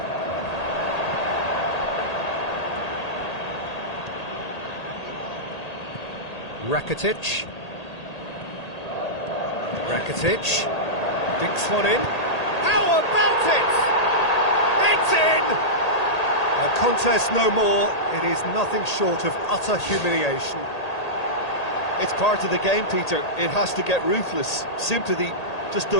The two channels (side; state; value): right; late; 1.8 ms